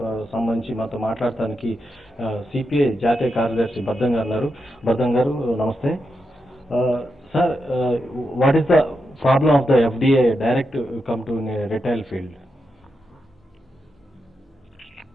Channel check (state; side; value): normal; both; correlation 0.86